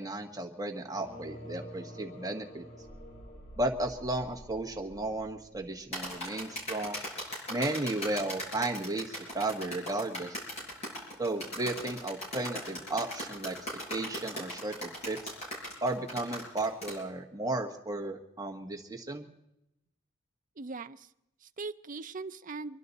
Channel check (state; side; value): normal; both; correlation 0.40